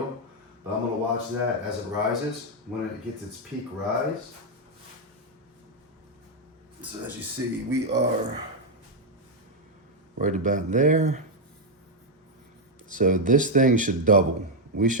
but I'm gonna watch that as it rises. When it gets its peak rise. So as you see, we are right about there. So this thing should double. We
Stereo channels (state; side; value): normal; both; correlation 0.01